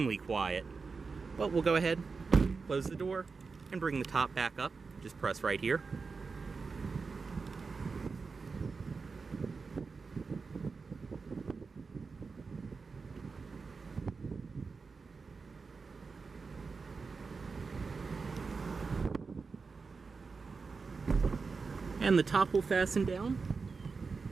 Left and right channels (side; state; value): left; quieter; 4.7 dB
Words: quiet. But we'll go ahead, close the door, and bring the top back up. Just press right here. And the top will fasten down,